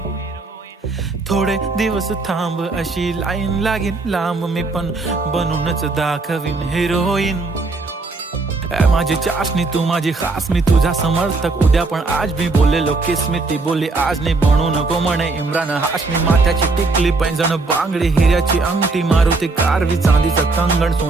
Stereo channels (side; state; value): left; quieter; 3.6 dB